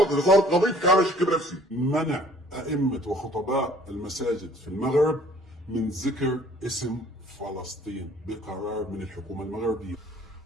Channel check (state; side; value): normal; both; correlation 0.55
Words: اذا صارت قضيتك. على شك بنفسي. منع ائمه وخطباء المساجد في المغرب من ذكر اسم فلسطين بقرار من الحكومه المغربيه.